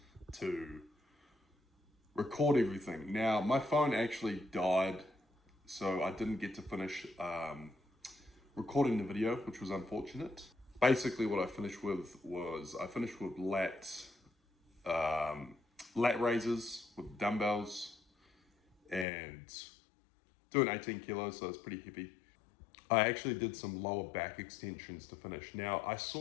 to record everything. Now, my phone actually died, so I didn't get to finish recording the video, which was unfortunate. Basically, what I finished with was lat raises with dumbbells and doing 18 kilos, so it's pretty heavy. I actually did some lower back extensions to finish. Now, I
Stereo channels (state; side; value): drops out; right; at 19.1 s